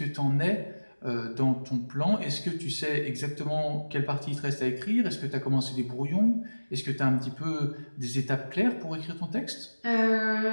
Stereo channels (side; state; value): both; inverted; correlation -1.00